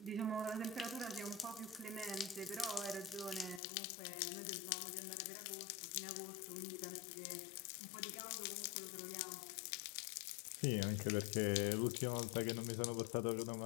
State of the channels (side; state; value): right; drops out; at 3.6 s